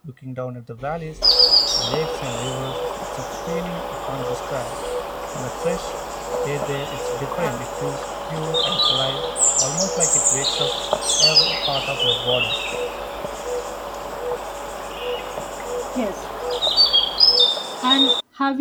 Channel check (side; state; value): both; identical; correlation 1.00